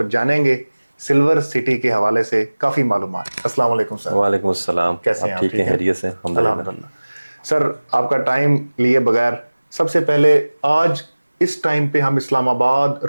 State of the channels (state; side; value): inverted; both; correlation -1.00